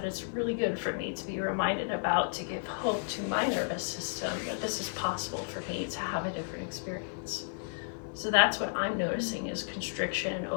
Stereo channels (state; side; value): silent; right; 56 dB below the other